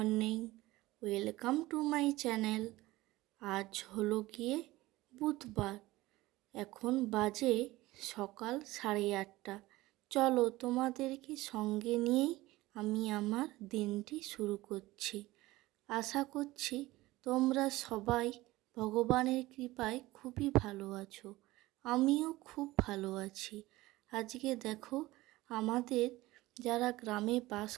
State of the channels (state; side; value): quieter; left; 18.7 dB